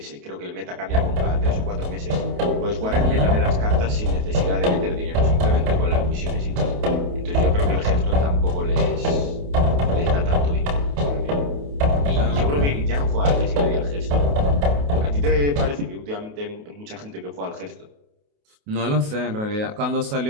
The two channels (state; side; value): late; left; 28 ms